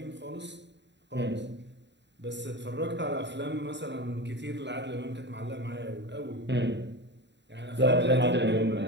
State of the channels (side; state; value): left; late; 0.52 ms